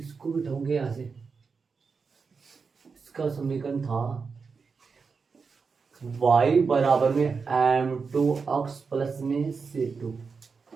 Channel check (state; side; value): quieter; left; 5.1 dB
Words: बिठाऊंगे यहाँ से। इसका समीकरण था y बराबर में m2 अक्ष प्लस में c2।